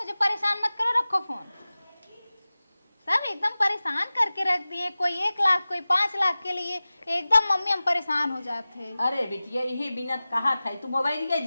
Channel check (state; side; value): inverted; both; correlation -0.97